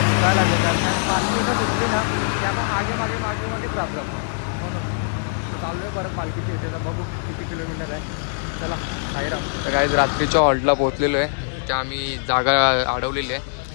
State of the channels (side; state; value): right; silent; digital silence